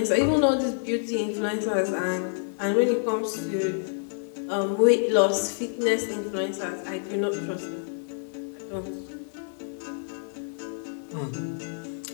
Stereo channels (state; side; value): silent; right; digital silence